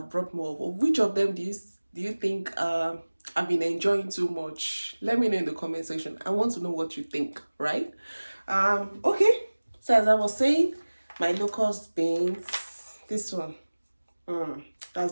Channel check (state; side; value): inverted; both; correlation -1.00